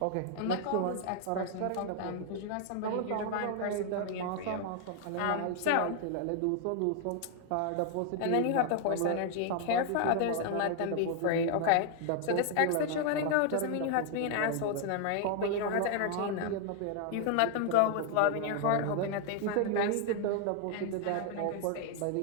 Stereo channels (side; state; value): both; different; correlation 0.00